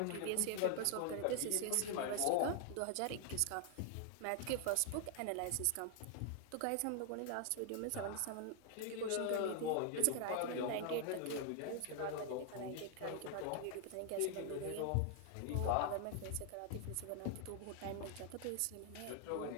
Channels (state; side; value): different; both; correlation 0.00